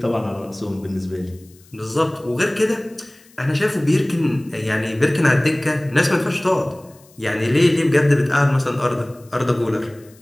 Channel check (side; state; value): left; noise; hiss, 28 dB below the sound